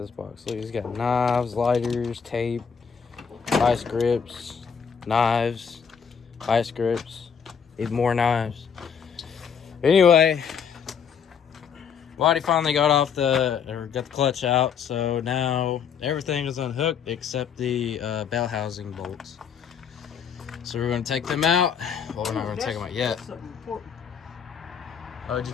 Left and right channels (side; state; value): right; quieter; 7.0 dB